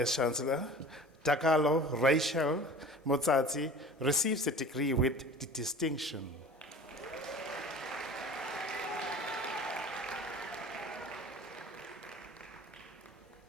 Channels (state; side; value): normal; both; correlation 0.41